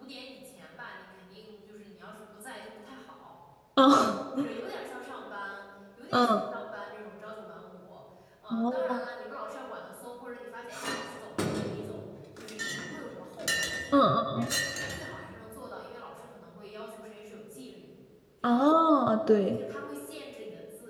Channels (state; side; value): identical; both; correlation 1.00